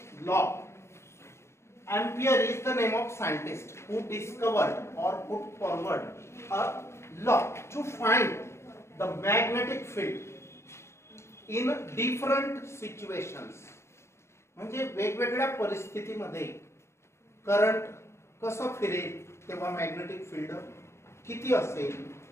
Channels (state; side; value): late; right; 0.13 ms